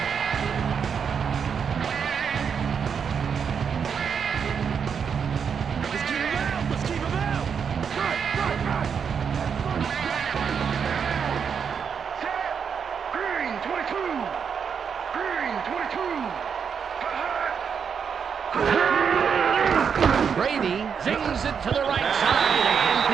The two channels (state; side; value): quieter; left; 6.8 dB